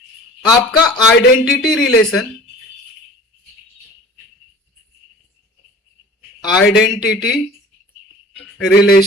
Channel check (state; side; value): normal; both; correlation 0.43